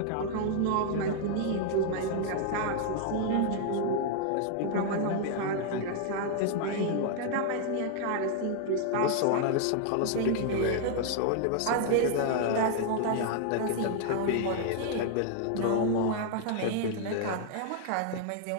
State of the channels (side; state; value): both; different; correlation -0.01